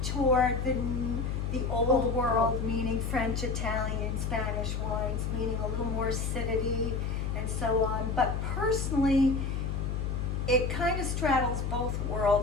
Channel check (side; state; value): left; noise; hum, 1 dB below the sound